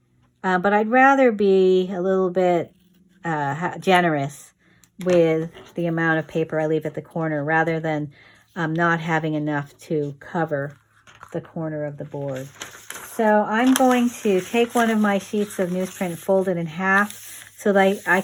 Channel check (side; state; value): both; identical; correlation 1.00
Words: but I'd rather be a little bit generous with the amount of paper I leave at the corner rather than not having enough to cover the corner of the board. So I'm going to take one of my sheets of newsprint, fold it in half so that I